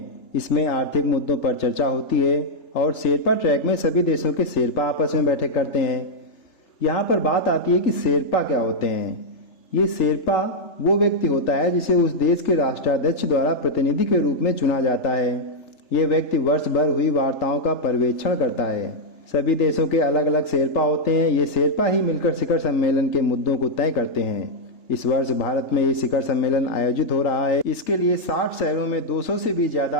इसमें आर्थिक मुद्दों पर चर्चा होती है। और शेरपा ट्रैक में सभी देशों के शेरपा आपस में बैठक करते हैं। यहाँ पर बात आती है कि शेरपा क्या होते हैं। ये शेरपा वो व्यक्ति होता है जिसे उस देश के राष्ट्राध्यक्ष द्वारा प्रतिनिधि के रूप में चुना जाता है। ये व्यक्ति वर्ष भर हुई वार्ताओं का पर्यवेक्षण करता है। सभी देशों के अलग अलग शेरपा होते हैं। ये शेरपा ही मिलकर शिखर सम्मेलन के मुद्दों को तय करते हैं। इस वर्ष भारत में ये शिखर सम्मेलन आयोजित हो रहा है। इसके लिए 60 शहरों में 200 से भी ज्यादा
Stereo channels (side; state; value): right; late; 3.3 ms